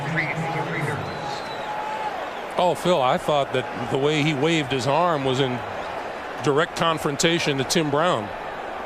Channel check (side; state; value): both; identical; correlation 1.00